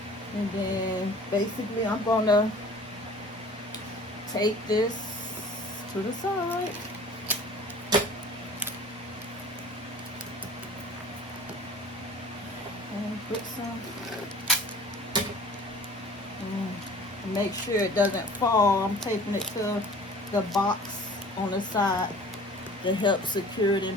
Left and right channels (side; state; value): both; normal; correlation 0.45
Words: And then basically I'm gonna take this to the side. And put some, make sure it doesn't fall. I'm taping it to the box on the side to help secure it in